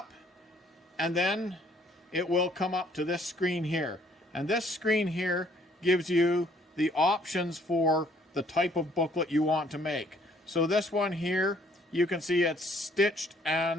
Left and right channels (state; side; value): normal; both; correlation 0.62